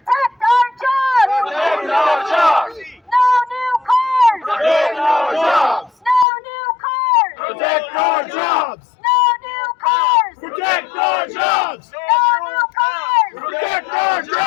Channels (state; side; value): drops out; right; at 6.2 s